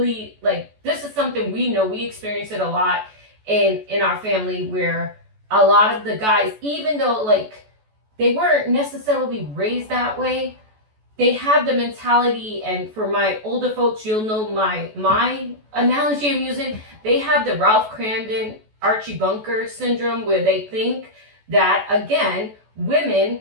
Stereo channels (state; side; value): late; left; 14 ms